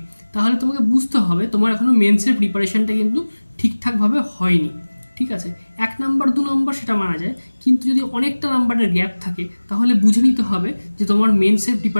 তাহলে তোমাকে বুঝতে হবে তোমার এখনও মেন্সের প্রিপারেশনটা কিন্তু ঠিকঠাকভাবে হয়নি। ঠিক আছে, 1 নাম্বার 2 নাম্বার সেটা মানা যায়, কিন্তু যদি অনেকটা নাম্বারের গ্যাপ থাকে তাহলে বুঝে নিতে হবে যে তোমার মেন্সের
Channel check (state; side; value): inverted; both; correlation -1.00